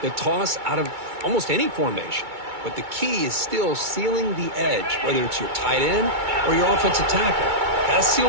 toss out of almost any formation. But the key is still sealing the edge, whether it's your tight end or your offensive tackle. Got to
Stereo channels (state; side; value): late; left; 2.2 ms